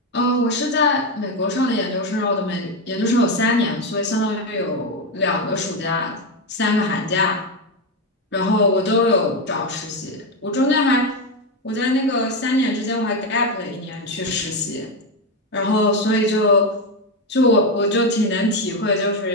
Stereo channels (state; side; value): normal; both; correlation 0.10